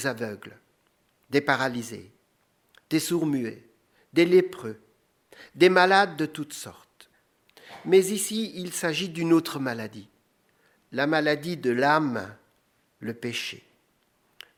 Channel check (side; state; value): both; identical; correlation 1.00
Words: aveugles, des paralysés, des sourds-muets, des lépreux, des malades de toutes sortes. Mais ici, il s'agit d'une autre maladie, la maladie de l'âme, le péché.